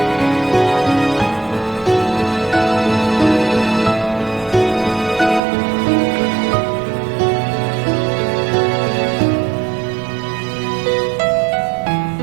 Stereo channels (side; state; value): left; drops out; at 5.4 s